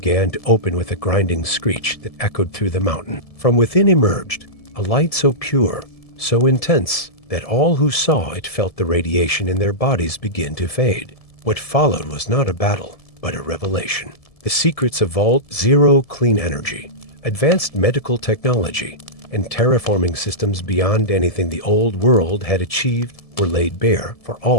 to open with a grinding screech that echoed through the mountain. From within emerged a light so pure, so intense, that all who saw it felt the radiation in their bodies begin to fade. What followed was not a battle, but a revelation. The secrets of Vault Zero clean energy, advanced medical technology, and terraforming systems beyond anything the old world had achieved were laid bare for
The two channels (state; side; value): late; right; 1.7 ms